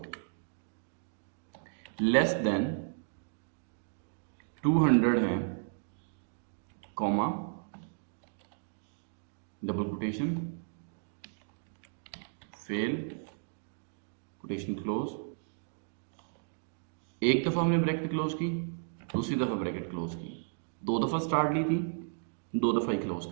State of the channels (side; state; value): left; silent; digital silence